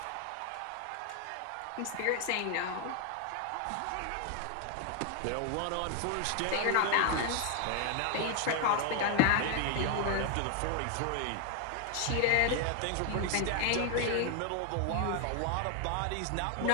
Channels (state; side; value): different; both; correlation 0.00